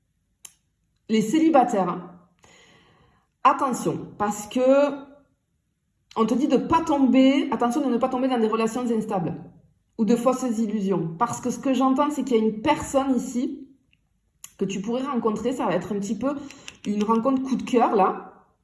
les célibataires, attention, parce que on te dit de pas tomber, attention de ne pas tomber dans des relations instables ou de fausses illusions. Parce que ce que j'entends, c'est qu'il y a une personne ici que tu pourrais rencontrer, ça va être un petit peu une rencontre coup de cœur là.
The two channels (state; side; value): identical; both; correlation 1.00